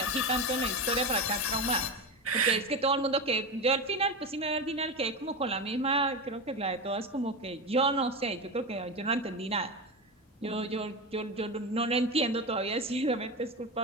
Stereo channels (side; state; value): both; normal; correlation 0.19